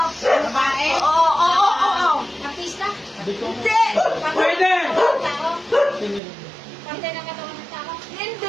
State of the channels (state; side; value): drops out; left; at 6.2 s